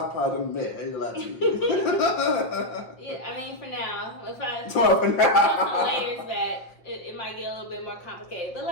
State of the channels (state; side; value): late; right; 5.7 ms